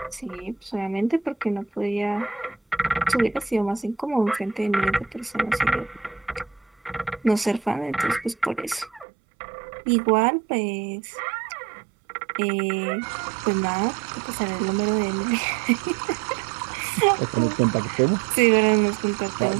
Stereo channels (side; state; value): left; drops out; at 9.1 s